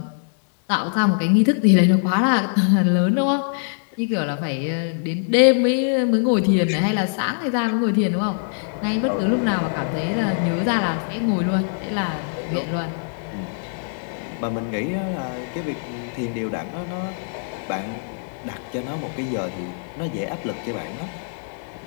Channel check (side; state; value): right; silent; digital silence